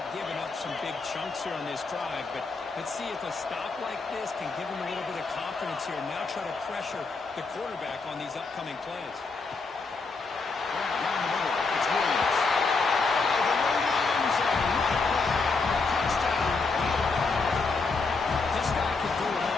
giving up some big chunks here on this drive, but let's see if a stop like this can give them a little bit of confidence here. Now try to pressure the quarterback on these upcoming plays. Down the middle. It's Williams.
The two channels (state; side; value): quieter; right; 4.2 dB